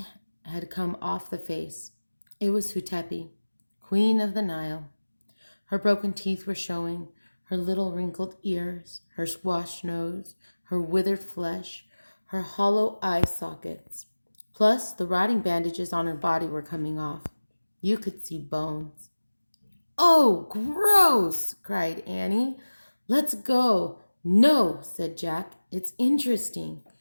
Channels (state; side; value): inverted; both; correlation -1.00